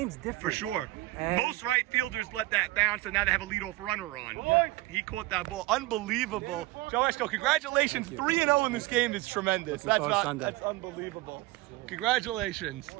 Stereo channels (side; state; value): left; quieter; 19.3 dB